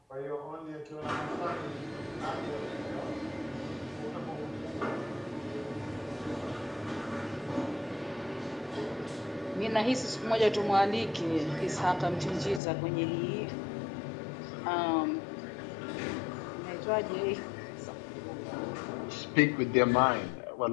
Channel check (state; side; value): drops out; right; at 12.6 s